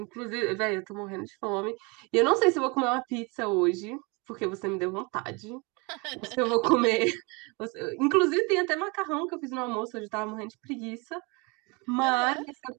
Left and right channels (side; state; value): left; quieter; 29.0 dB